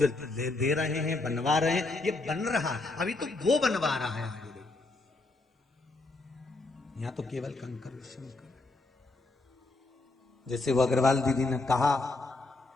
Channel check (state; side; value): quieter; right; 3.2 dB